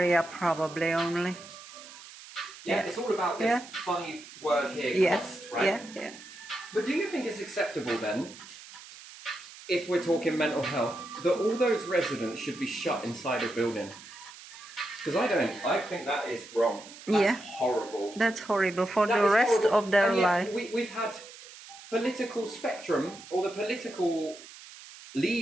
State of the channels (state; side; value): noise; right; hiss, 17 dB below the sound